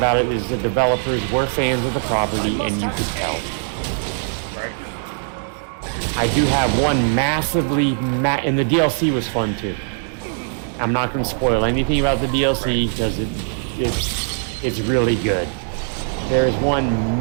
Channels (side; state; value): left; silent; 61 dB below the other